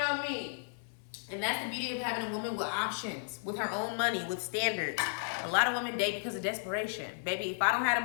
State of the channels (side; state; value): right; silent; 55 dB below the other